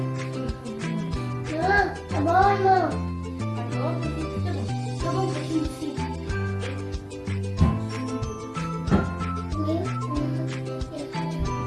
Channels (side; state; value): both; identical; correlation 1.00